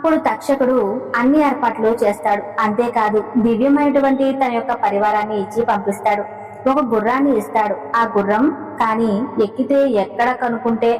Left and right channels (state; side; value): identical; both; correlation 1.00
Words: తక్షకుడు అన్ని ఏర్పాట్లు చేస్తాడు. అంతేకాదు దివ్యమైనటువంటి తన యొక్క పరివారాన్ని ఇచ్చి పంపిస్తాడు. ఒక గుర్రాన్ని ఇస్తాడు. ఆ గుర్రం కానీ ఎక్కితే ఎక్కడ కనుక్కుంటే